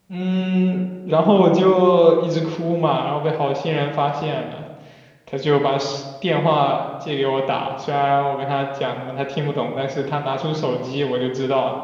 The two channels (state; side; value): identical; both; correlation 1.00